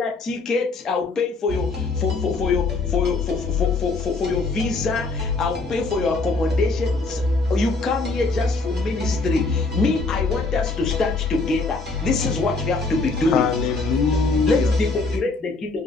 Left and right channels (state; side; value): quieter; right; 3.6 dB